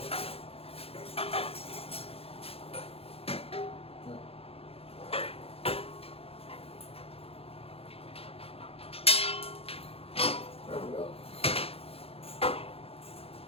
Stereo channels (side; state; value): right; late; 0.28 ms